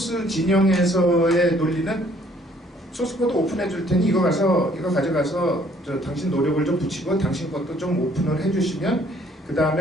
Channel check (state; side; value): normal; both; correlation 0.62